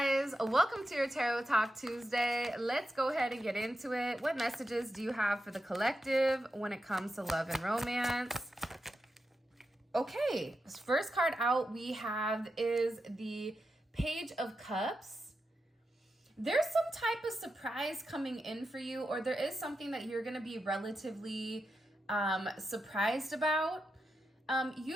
welcome to your Tarot Talk Tuesday. Let's go ahead and get into it. What messages do you have for the collective when it comes to love and romance? Okay, first card out we have is the Page of Cups. There's some type of surprise coming in for you, or there is something that you're going to be relatively surprised about.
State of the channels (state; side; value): normal; both; correlation 0.88